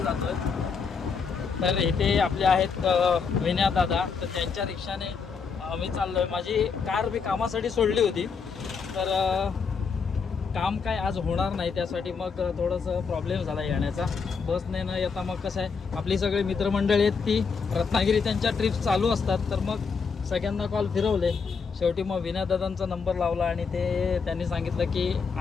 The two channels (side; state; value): right; quieter; 5.5 dB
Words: जातो आहे। तर इथे आपले आहेत विनया दादा, तर त्यांच्या रिक्षाने मी चाललो आहे। माझी कार मी कामासाठी सोडली होती, तर काम काय आज होणार नाही, त्यासाठी मग थोडंसं प्रॉब्लेम झाला येण्याचा। बसने न येता मग कसं आहे, आपली सगळी मित्रमंडळी आहेत ती रत्नागिरी त्यांच्या ट्रिप्स चालू असतात, तर मग सगळ्यांना कॉल फिरवले। शेवटी मग विनयदादांचा नंबर लावला आणि त्यांनी सांगितलं की